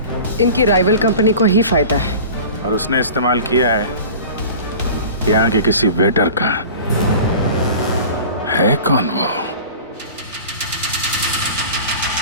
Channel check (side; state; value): both; inverted; correlation -0.39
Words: इनकी राइवल कंपनी को ही फायदा है। और उसने इस्तेमाल किया है यहाँ के किसी वेटर का। है कौन वो?